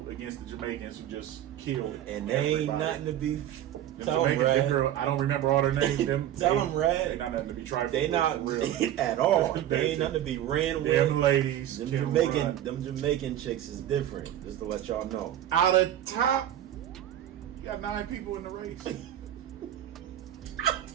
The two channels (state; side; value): quieter; left; 11.7 dB